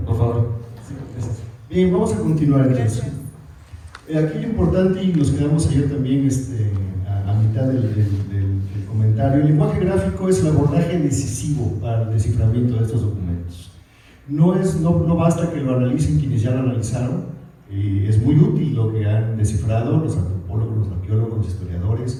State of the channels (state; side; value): identical; both; correlation 1.00